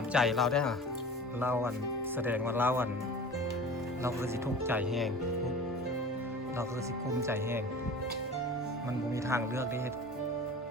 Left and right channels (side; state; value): both; normal; correlation 0.38